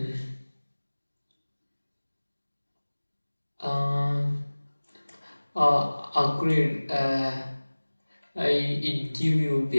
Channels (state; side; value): inverted; both; correlation -1.00